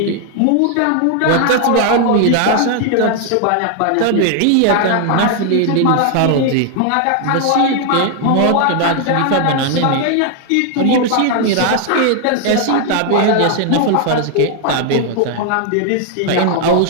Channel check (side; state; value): both; different; correlation 0.00